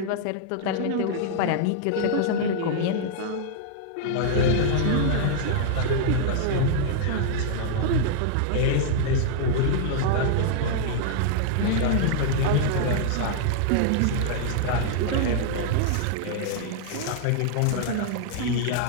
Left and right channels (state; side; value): different; both; correlation -0.01